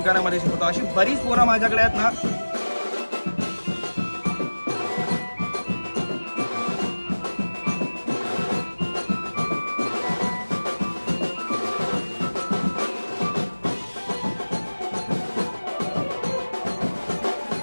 शिकवतो. अशी बरीच पोरं माझ्याकडे आहेत ना.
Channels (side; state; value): both; inverted; correlation -1.00